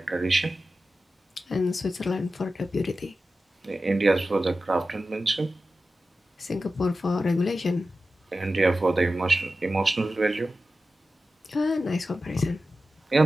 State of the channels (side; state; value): both; normal; correlation 0.93